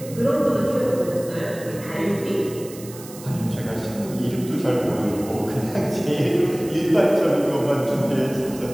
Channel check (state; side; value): noise; right; hiss, 17 dB below the sound